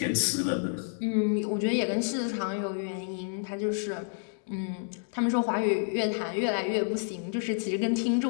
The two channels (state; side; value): silent; right; digital silence